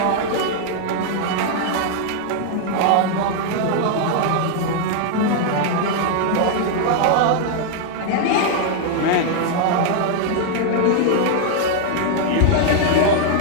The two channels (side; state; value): both; different; correlation 0.00